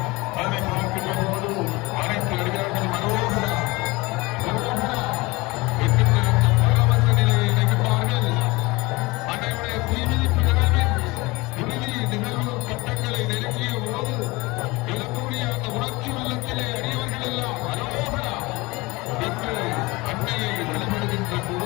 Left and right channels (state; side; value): quieter; right; 23.2 dB